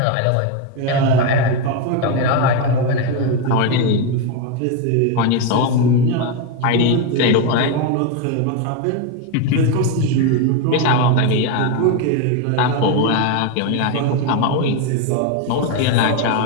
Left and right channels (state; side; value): different; both; correlation 0.02